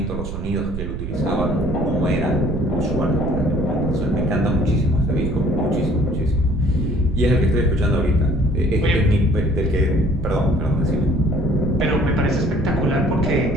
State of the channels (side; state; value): right; noise; rumble, 6 dB below the sound